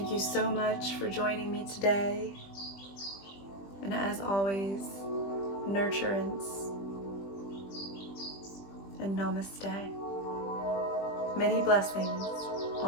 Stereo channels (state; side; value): late; right; 20 ms